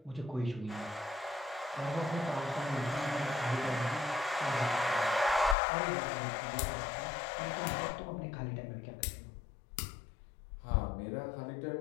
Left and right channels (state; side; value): drops out; right; at 5.6 s